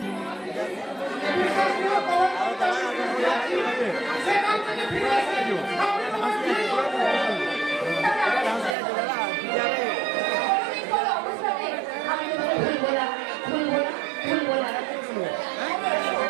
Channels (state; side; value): drops out; left; at 8.8 s